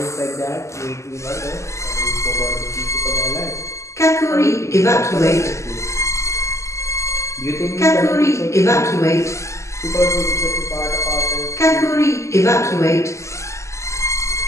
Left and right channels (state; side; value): late; right; 0.14 ms